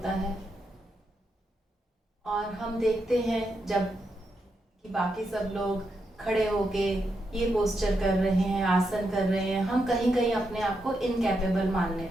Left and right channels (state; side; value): normal; both; correlation 0.83